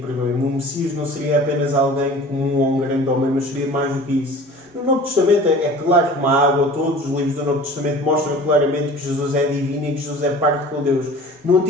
Messias não seria apenas alguém comum ou um grande homem, mas seria mais do que isso. No Novo Testamento é claro como a água, todos os livros do Novo Testamento mostram claramente que Jesus é divino e que Jesus é parte com Deus. No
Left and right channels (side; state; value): both; normal; correlation 0.43